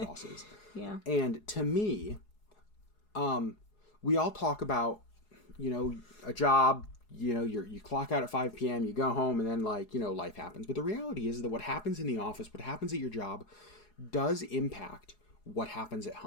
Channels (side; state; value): right; late; 4.8 ms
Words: bosses. Yeah. And to me, we all talk about, a job, you clock out at 5 p.m., you go home, and then life happens. But the reality is that what happens in the office, what happens at your job, does impact what happens at